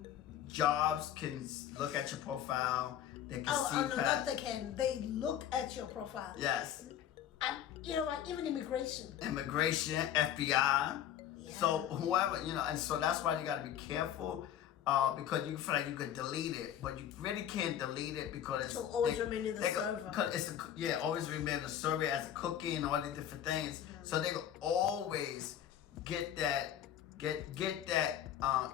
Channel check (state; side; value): quieter; right; 10.4 dB